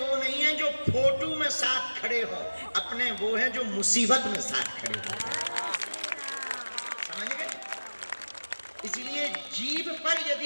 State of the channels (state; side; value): inverted; both; correlation -1.00